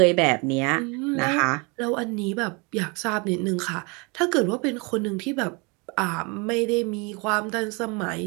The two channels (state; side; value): quieter; left; 30.0 dB